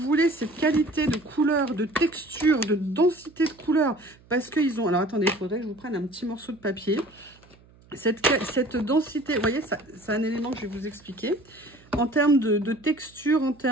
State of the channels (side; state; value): right; noise; hum, 27 dB below the sound